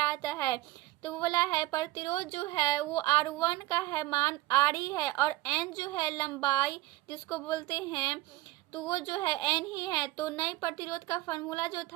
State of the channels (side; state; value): left; quieter; 17.2 dB